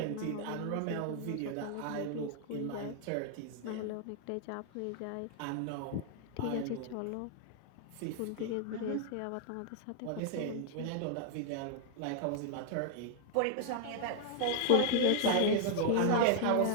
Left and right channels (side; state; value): both; different; correlation 0.00